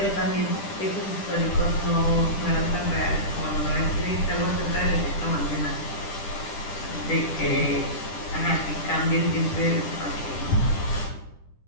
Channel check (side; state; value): right; late; 10 ms